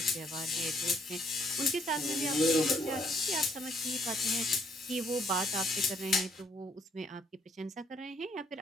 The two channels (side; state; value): both; normal; correlation 0.69